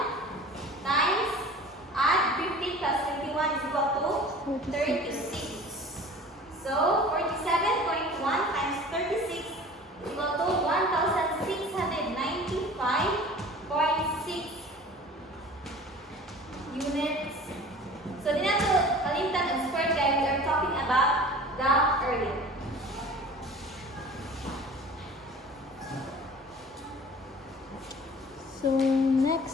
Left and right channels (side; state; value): both; normal; correlation 0.42